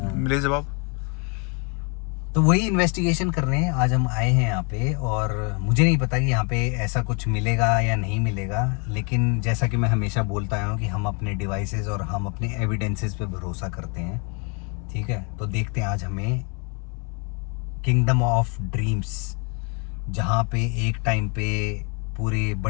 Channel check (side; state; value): right; quieter; 34.8 dB